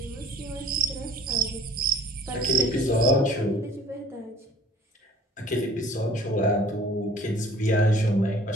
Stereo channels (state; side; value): normal; both; correlation 0.48